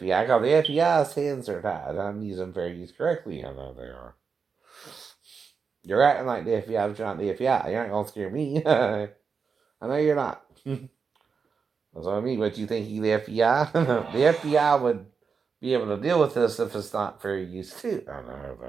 because the FBI's hands are tied. I'm using fair use correctly. I know they are. You're acting like the FBI, but you're not the FBI. You're not gonna scare me. I know you're not. That's what I mean. But you think you the FBI? The FBI would be able to deal with this if it's not fair use too. I know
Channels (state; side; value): quieter; left; 5.6 dB